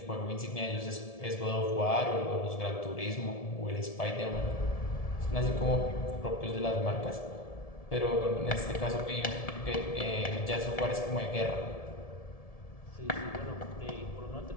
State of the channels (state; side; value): late; right; 1.7 ms